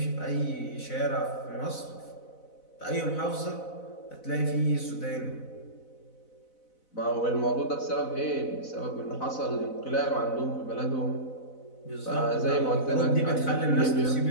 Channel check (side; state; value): right; late; 4.0 ms